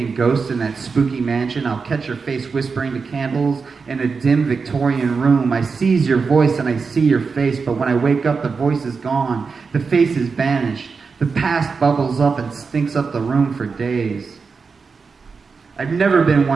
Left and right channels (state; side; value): quieter; left; 5.0 dB